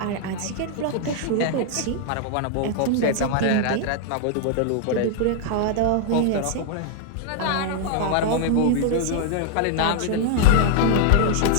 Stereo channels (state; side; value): different; both; correlation 0.00